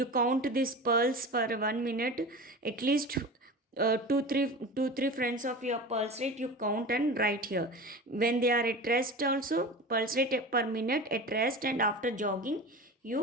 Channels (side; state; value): both; normal; correlation 0.32